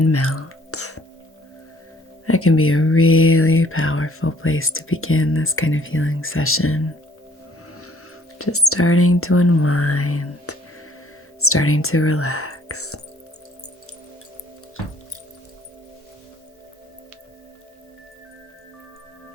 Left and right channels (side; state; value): both; normal; correlation 0.59